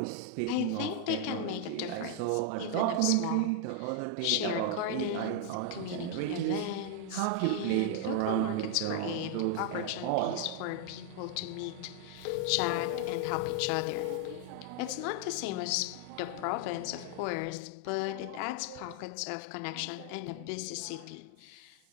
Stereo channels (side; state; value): both; different; correlation 0.00